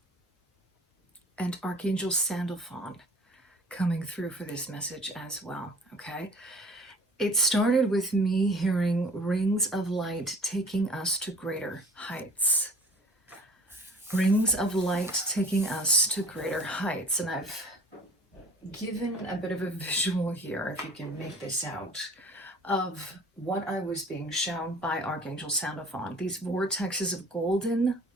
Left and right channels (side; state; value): both; normal; correlation 0.48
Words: and Archangel Sandalphon coming through for this message as well, okay? It started with me hearing rings of light taking us to greater heights. Rings of light taking us to greater heights. And I've given a bit of a visual here, if you can make this out, of what I was being shown by Archangel Sandalphon. These vortexes of golden